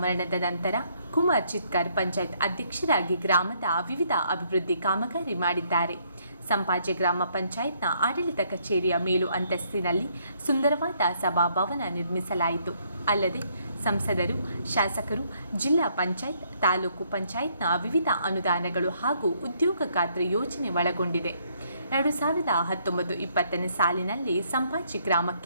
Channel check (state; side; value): inverted; both; correlation -0.69